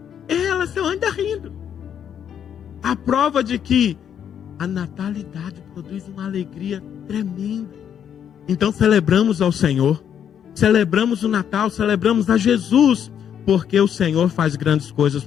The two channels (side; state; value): right; quieter; 8.8 dB